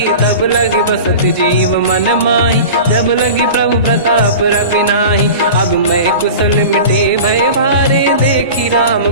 तब लगी बसत जीव मन माही जब लगी प्रभु प्रताप रविनाही अब मैं कुशल मिटे भय भारे देखी राम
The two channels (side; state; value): both; inverted; correlation -0.35